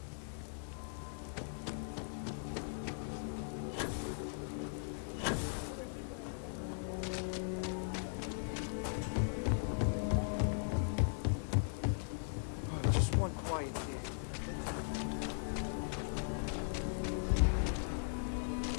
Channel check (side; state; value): right; silent; 52 dB below the other